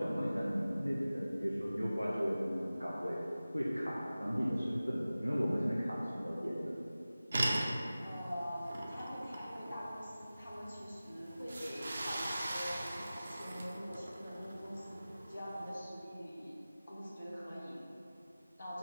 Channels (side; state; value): both; inverted; correlation -0.97